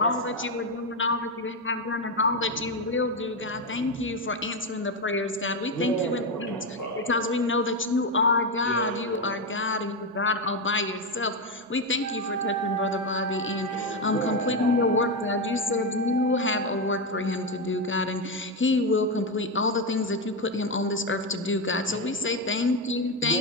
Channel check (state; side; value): normal; both; correlation 0.09